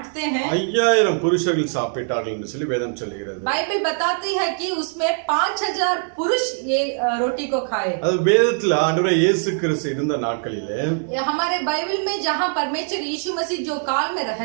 हैं. 5000 புருஷர்கள் சாப்பிட்டார்கள் என்று சொல்லி வேதம் சொல்கிறது. बाइबल बताती है कि उसमें 5000 पुरुष ये रोटी को खाए. அது வேதத்துல ஆண்டவர் இயேசு கிறிஸ்து இருந்த நாட்களிலே हमारे बाइबल में जहां परमेश्वर यीशु मसीह जो काल में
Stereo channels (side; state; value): left; silent; 58 dB below the other